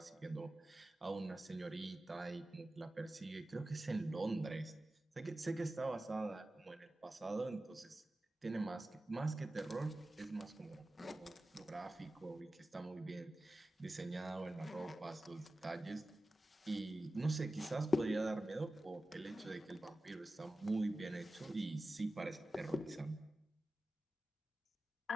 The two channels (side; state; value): both; normal; correlation 0.94